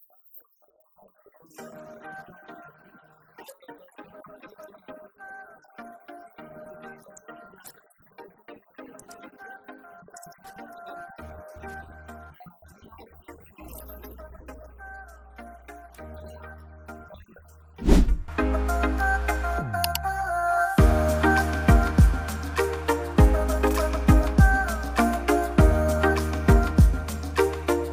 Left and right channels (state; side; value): identical; both; correlation 1.00